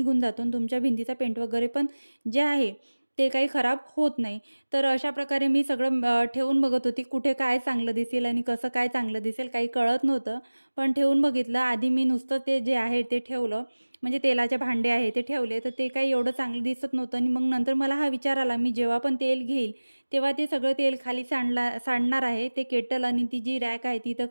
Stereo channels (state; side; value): inverted; both; correlation -1.00